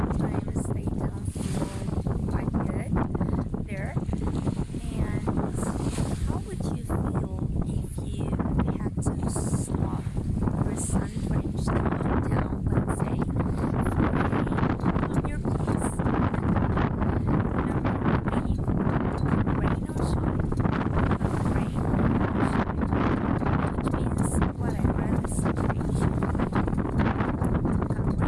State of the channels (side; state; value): both; identical; correlation 1.00